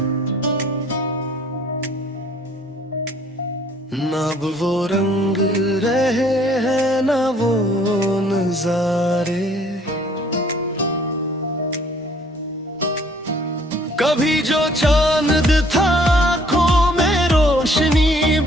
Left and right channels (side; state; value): both; normal; correlation 0.59